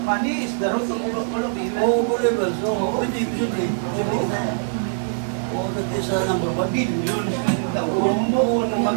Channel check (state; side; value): silent; left; 64 dB below the other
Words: Money is the root of all of evil. Oh, believers. Oh, pwede, posible. Posible na. Oh, that is number one. Billions ng taon mo na